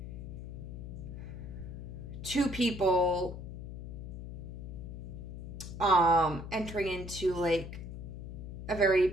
two people entering into like a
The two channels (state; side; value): noise; left; hum, 9 dB below the sound